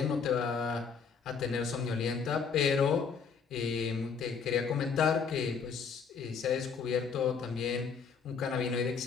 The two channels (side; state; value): right; quieter; 5.9 dB